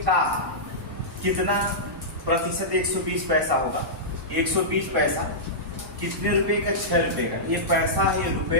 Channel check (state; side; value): normal; both; correlation -0.14